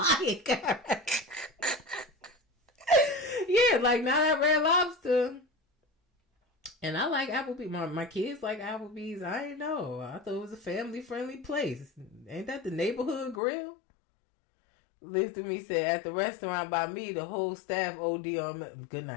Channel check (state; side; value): drops out; right; at 13.4 s